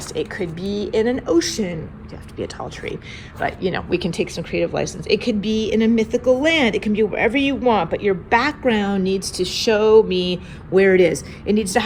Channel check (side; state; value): both; identical; correlation 1.00